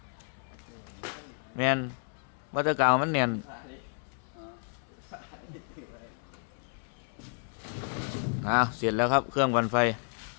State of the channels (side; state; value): right; silent; 57 dB below the other